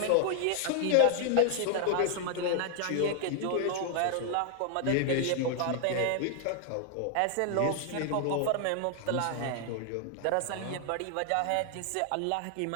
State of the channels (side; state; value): both; different; correlation 0.00